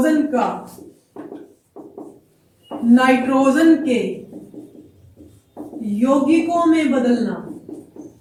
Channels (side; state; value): both; identical; correlation 1.00